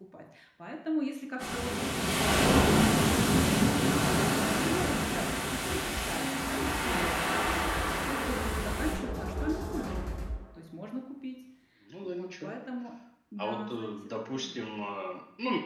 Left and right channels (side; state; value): both; identical; correlation 1.00